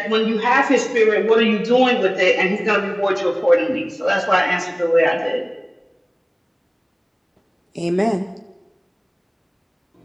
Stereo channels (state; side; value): identical; both; correlation 1.00